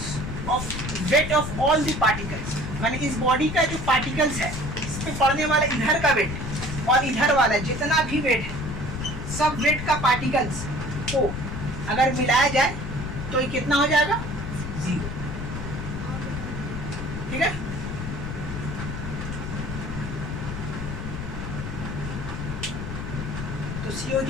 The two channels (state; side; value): noise; left; rumble, 6 dB below the sound